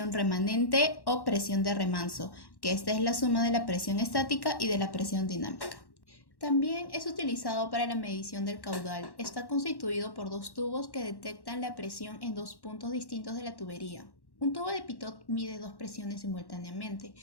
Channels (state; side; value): late; right; 1.1 ms